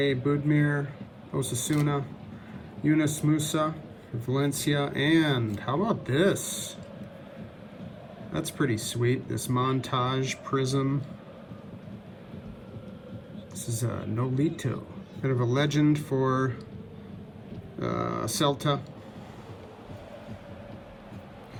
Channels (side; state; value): both; identical; correlation 1.00